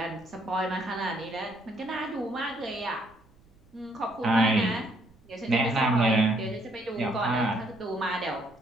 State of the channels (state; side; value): noise; right; rumble, 29 dB below the sound